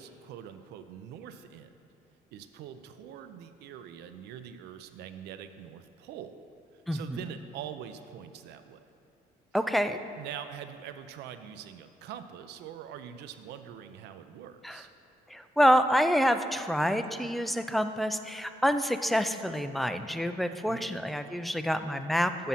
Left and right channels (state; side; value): normal; both; correlation 0.87